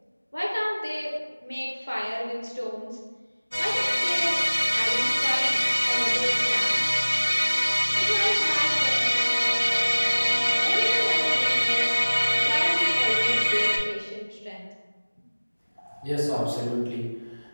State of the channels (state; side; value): inverted; both; correlation -1.00